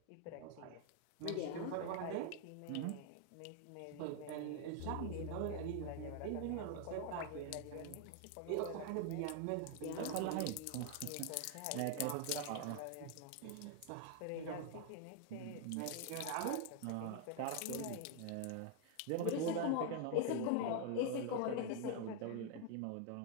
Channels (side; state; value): both; different; correlation 0.00